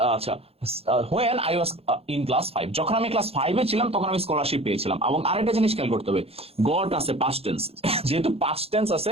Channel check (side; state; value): left; late; 0.29 ms